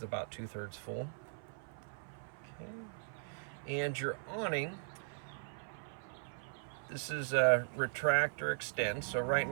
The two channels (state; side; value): silent; left; 52 dB below the other